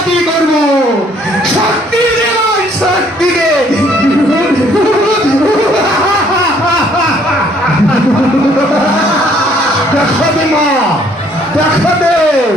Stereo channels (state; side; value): normal; both; correlation 0.63